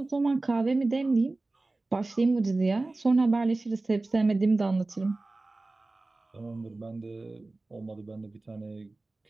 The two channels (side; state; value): left; quieter; 3.1 dB